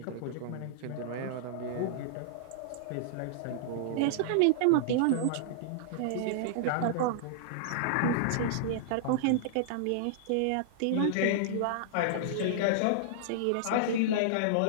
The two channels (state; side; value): different; both; correlation -0.01